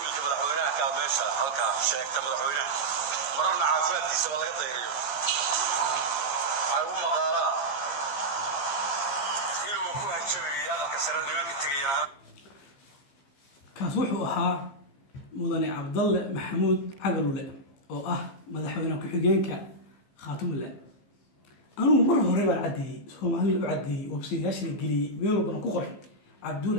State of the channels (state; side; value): late; right; 15 ms